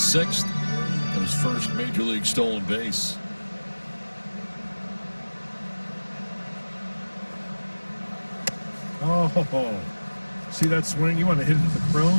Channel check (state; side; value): inverted; both; correlation -1.00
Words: and his first major league stolen base. Oh, see that swing? You want to hit it into the